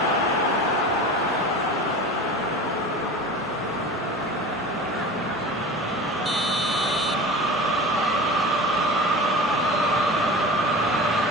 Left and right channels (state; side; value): normal; both; correlation 0.35